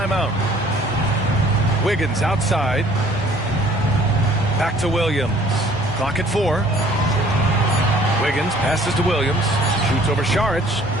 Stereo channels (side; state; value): both; normal; correlation 0.55